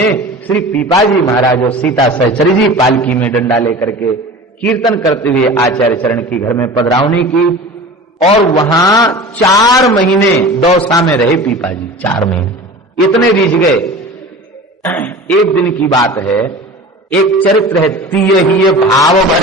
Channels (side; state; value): both; normal; correlation 0.36